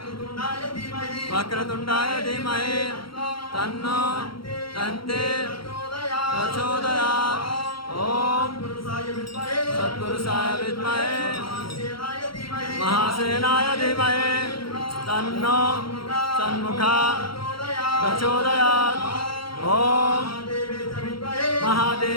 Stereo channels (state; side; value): late; right; 0.73 ms